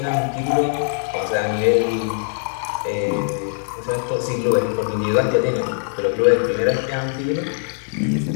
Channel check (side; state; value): right; silent; 61 dB below the other